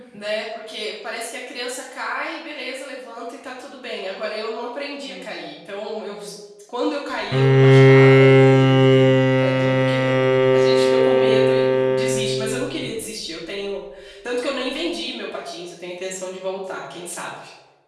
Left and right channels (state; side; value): identical; both; correlation 1.00